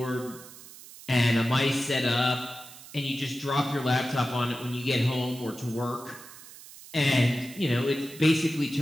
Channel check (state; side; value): noise; right; hiss, 17 dB below the sound